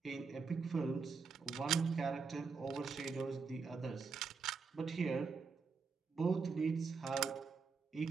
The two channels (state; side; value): quieter; left; 5.0 dB